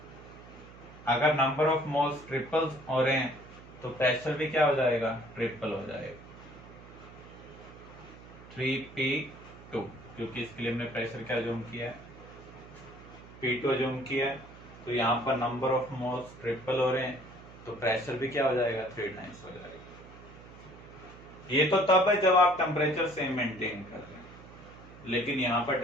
अगर नंबर ऑफ मोल्स ट्रिपल्स हो रहे हैं तो प्रेशर भी क्या हो जाएगा? ट्रिपल हो जाएगा, 3P2, क्योंकि इसके लिए हमने प्रेशर क्या अज्यूम किया है? P2 अज्यूम किया है। तो यहाँ पर नंबर ऑफ मोल्स ट्रिपल हो रहे हैं तो प्रेशर भी क्या हो जाएगा? 3 टाइम्स हो जाएगा। ये तो तब है जब आप टेम्परेचर सेम मेंटेन कर रहे हैं, लेकिन यहाँ पर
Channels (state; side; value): noise; right; hum, 18 dB below the sound